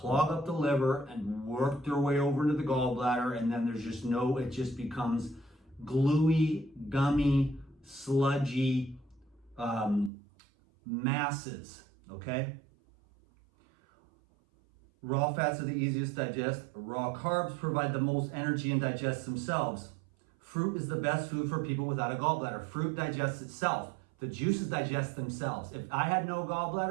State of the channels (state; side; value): drops out; left; at 10.1 s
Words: up the liver and work their way over into the gallbladder, and then there's just it just becomes gluey, gummy, sludgy masses, okay? Raw fats are the easiest to digest. Raw carbs provide the most energy and digest themselves. Fruit is the best food for people without a gallbladder. Fruit digests itself. The juices digest themselves. If I had no